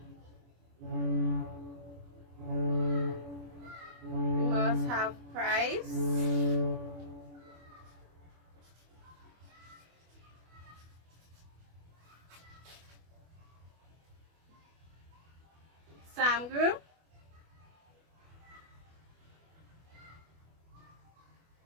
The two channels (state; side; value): late; left; 24 ms